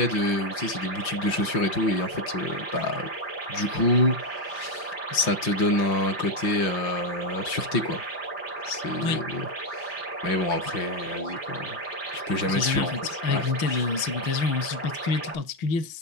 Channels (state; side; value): late; right; 5.8 ms